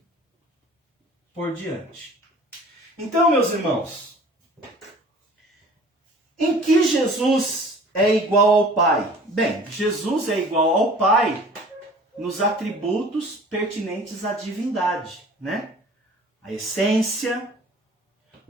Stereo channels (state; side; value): normal; both; correlation 0.47